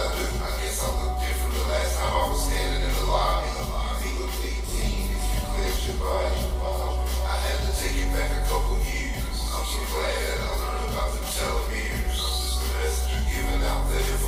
I do. I guess I look different the last time I was standing in the lobby. He looked 18 if you cleared your body. I had to take it back a couple years. I'm so glad I learned about the telomeres. Just the messenger giving out the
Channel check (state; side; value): identical; both; correlation 1.00